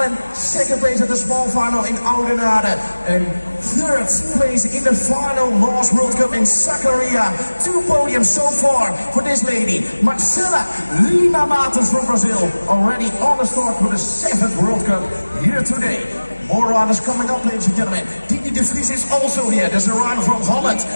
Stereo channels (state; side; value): inverted; both; correlation -1.00